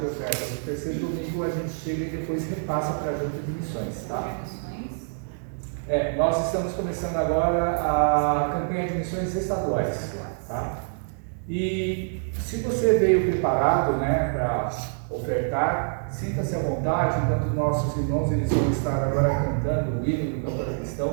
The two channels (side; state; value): left; silent; digital silence